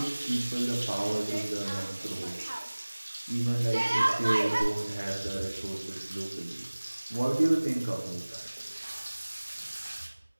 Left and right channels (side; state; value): both; inverted; correlation -1.00